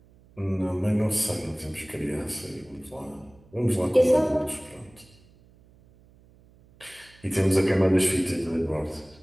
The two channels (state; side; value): noise; right; hum, 28 dB below the sound